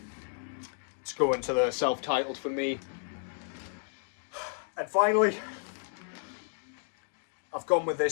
let's go into the self-titled for me. And finally, I've gone with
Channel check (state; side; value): silent; right; digital silence